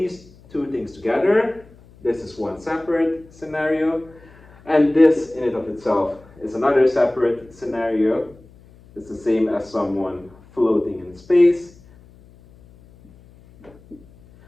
two things together. This is one separate scenario, and this in and of itself is another separate scenario. It's the same as someone floating in space,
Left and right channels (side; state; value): left; noise; hum, 25 dB below the sound